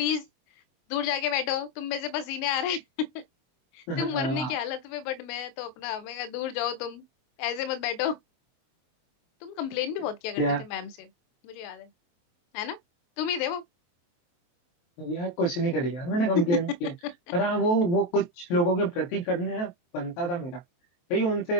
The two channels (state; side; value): late; right; 23 ms